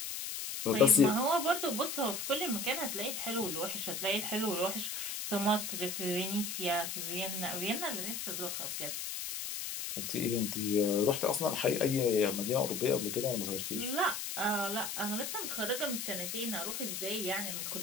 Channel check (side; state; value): left; noise; hiss, 4 dB below the sound